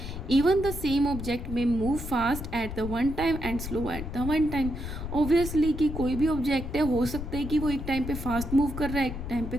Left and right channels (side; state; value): left; noise; rumble, 7 dB below the sound